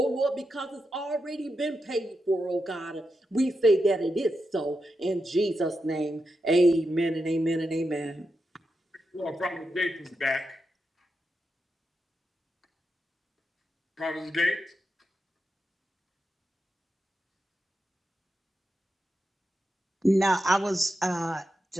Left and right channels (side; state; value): both; normal; correlation 0.87